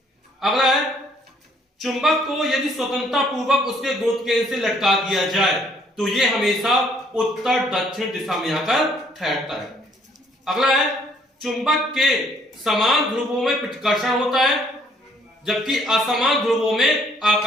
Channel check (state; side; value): normal; both; correlation 0.64